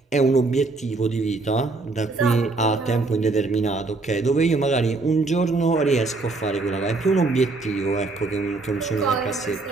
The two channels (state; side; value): quieter; left; 3.6 dB